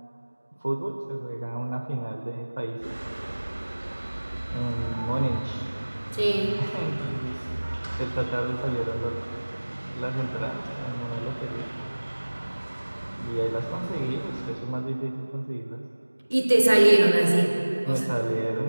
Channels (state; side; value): inverted; both; correlation -1.00